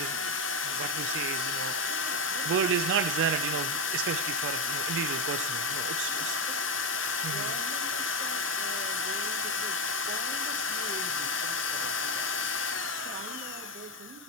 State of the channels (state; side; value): normal; both; correlation 0.09